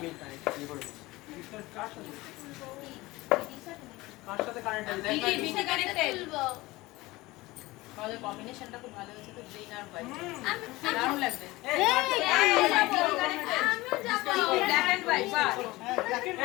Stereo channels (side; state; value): right; quieter; 20.2 dB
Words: কানেক্ট করব কার সাথে কানেক্ট আছে দেখ বিটি কানেক্টেড। আমাদের কম্বিনেশনটা খুব ভালো হয়েছে তো গ্রিন আর হোয়াইট দারুণ লাগবে আমিও যাবো। ব্ল্যাক এন্ড হোয়াইট বাহ